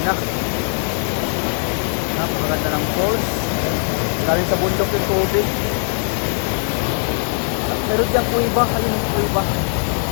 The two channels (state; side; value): silent; right; digital silence